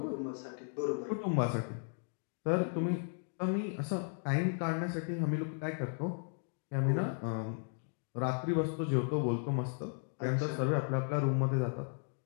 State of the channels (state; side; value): silent; right; 54 dB below the other